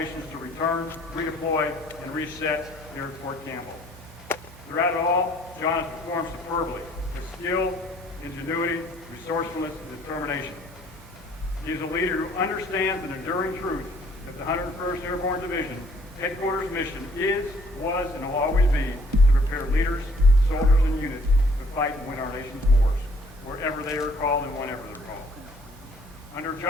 to return, redeploy, and reset here at Fort Campbell. Throughout it all, John has performed superbly with skill, ingenuity, resourcefulness, and determination. He is a leader who understands an enduring truth that the 101st Airborne Division headquarters mission is, was, and will always be to prepare leaders, soldiers, and units to fight and win our nation's wars, wherever they are called and whenever they're called. Under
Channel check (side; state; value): both; normal; correlation 0.60